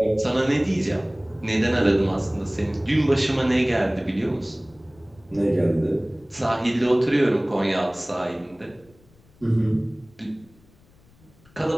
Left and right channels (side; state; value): left; noise; rumble, 29 dB below the sound